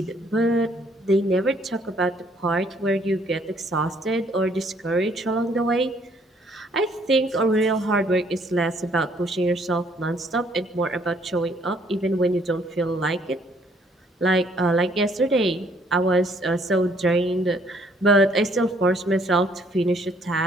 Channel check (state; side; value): normal; both; correlation 0.64